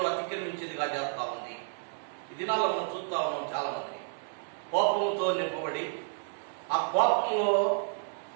అతిక్రమించేదిగా చేస్తా ఉంది. ఈ దినాల్లో మనం చూస్తా ఉన్నాం చాలా మంది. కోపంతో నింపబడి ఆ కోపంలో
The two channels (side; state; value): left; silent; 56 dB below the other